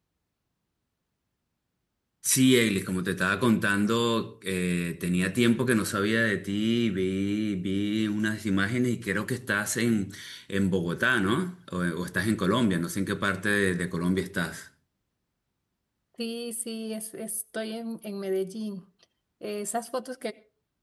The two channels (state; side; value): identical; both; correlation 1.00